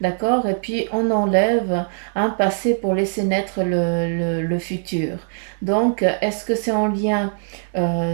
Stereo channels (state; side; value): silent; left; digital silence